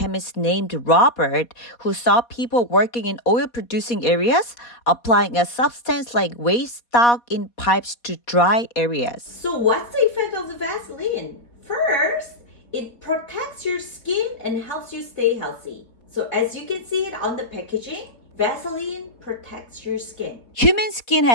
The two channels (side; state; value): right; late; 4.2 ms